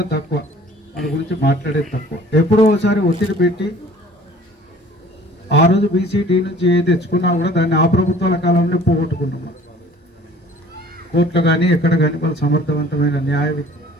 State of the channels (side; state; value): both; normal; correlation 0.51